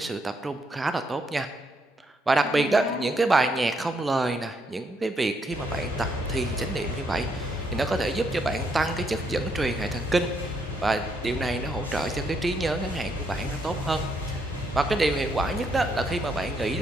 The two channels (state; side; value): normal; both; correlation 0.75